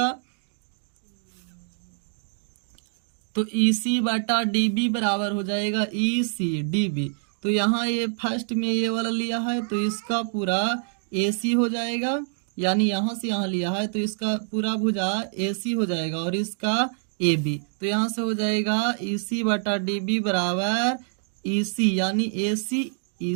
तो ई सी बटा डी बी बराबर हो जाएगा ई सी डी बी। तो यहाँ ये फर्स्ट में ये वाला लिया है तो इसका पूरा ए सी हो जाएगा, यानी यहाँ से यहाँ लिया है तो इसका पूरा भुजा ए सी हो जाएगा और इसका ए बी, तो यहाँ से हो जाएगा ई सी बटा डी बी बराबर ई सी, यानी ए सी ई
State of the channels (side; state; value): left; silent; 61 dB below the other